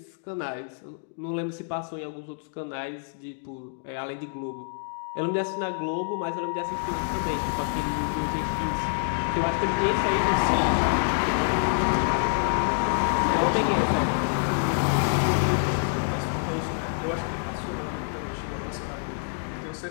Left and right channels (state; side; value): silent; right; digital silence